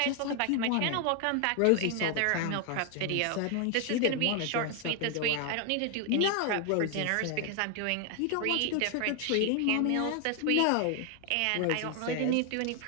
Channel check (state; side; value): different; both; correlation 0.00